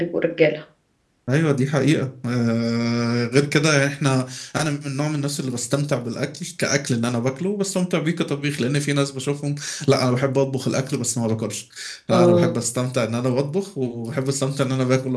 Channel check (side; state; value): both; identical; correlation 1.00